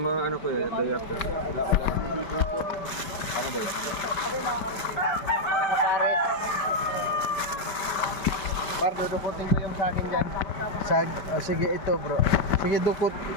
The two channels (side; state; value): right; late; 5.1 ms